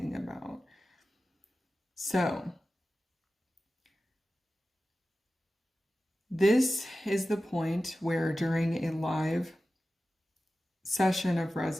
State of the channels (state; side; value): normal; both; correlation 0.94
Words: about. So, this is the point where during a live session of